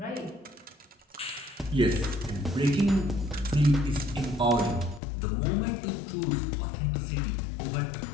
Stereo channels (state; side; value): drops out; right; at 5.0 s